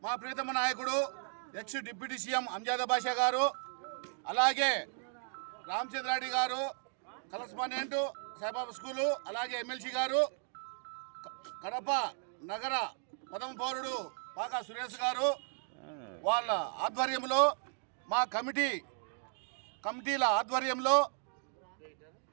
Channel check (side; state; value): left; silent; 54 dB below the other